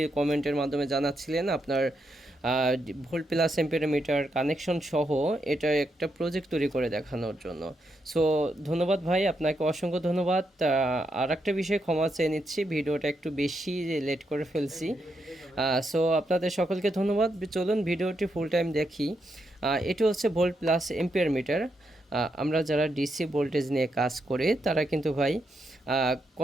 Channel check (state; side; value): normal; both; correlation 0.81